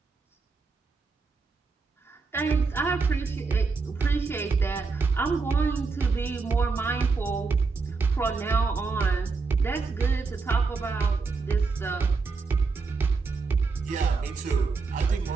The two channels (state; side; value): quieter; left; 4.4 dB